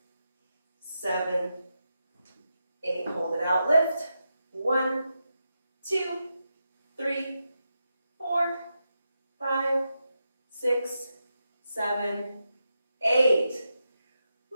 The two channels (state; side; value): inverted; both; correlation -0.87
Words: 7, 8, hold it out, lift, 1, 2, 3, 4, 5, 6, 7, 8.